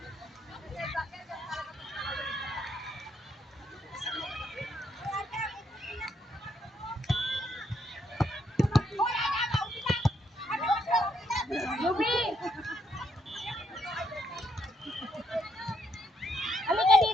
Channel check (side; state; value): both; normal; correlation 0.74